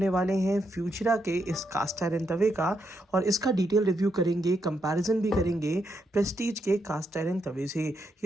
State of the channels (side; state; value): both; normal; correlation 0.80